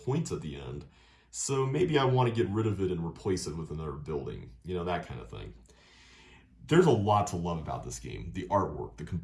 points at the end. So maybe I want to get rid of it and replace it with another building, that kind of thing. There's a lot to love about this game. The artwork, the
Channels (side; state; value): both; identical; correlation 1.00